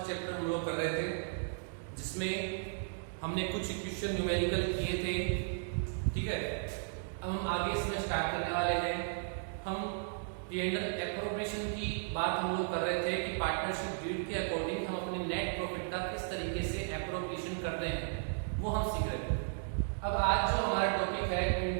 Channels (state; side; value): silent; left; digital silence